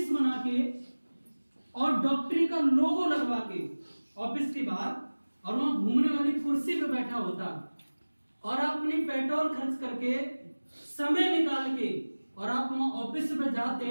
बना के और डॉक्टरी का लोगो लगवा के ऑफिस के बाहर और वहां घूमने वाली कुर्सी पे बैठा होता और आप अपनी पेट्रोल खर्च करके समय निकाल के और आप वहां ऑफिस पे जाते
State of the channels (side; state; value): both; inverted; correlation -1.00